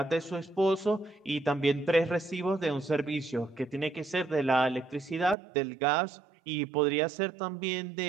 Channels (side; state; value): left; drops out; at 5.4 s